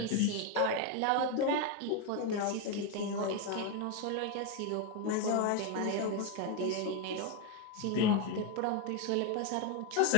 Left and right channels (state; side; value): different; both; correlation 0.02